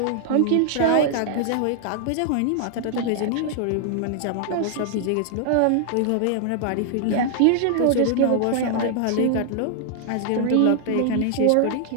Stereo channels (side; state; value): both; different; correlation -0.01